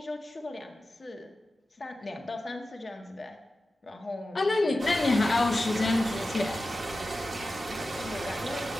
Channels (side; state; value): both; normal; correlation 0.93